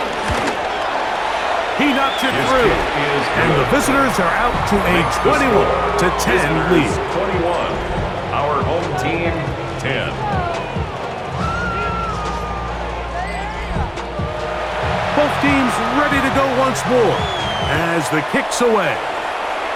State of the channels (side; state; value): both; identical; correlation 1.00